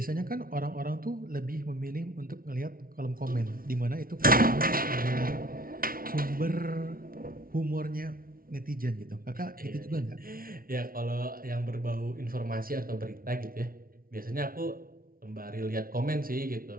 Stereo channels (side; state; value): left; late; 0.43 ms